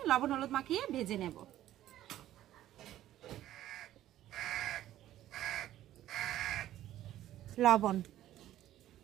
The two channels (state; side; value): quieter; left; 13.3 dB